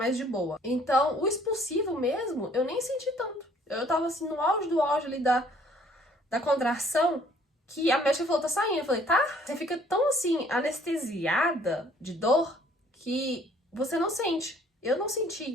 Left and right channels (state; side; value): normal; both; correlation 0.59